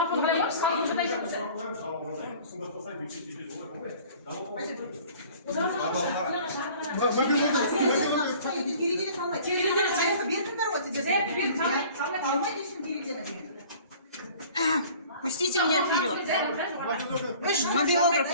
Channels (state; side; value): inverted; both; correlation -0.48